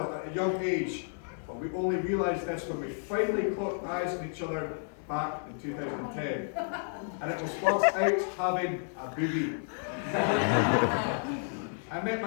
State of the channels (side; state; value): right; silent; digital silence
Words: at a young age. But we only realised this when we finally caught eyes on each other back in 2010. And it was whilst out having a boogie. I met